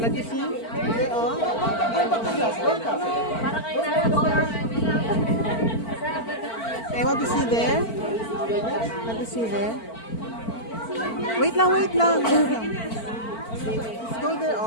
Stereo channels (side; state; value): right; late; 4.5 ms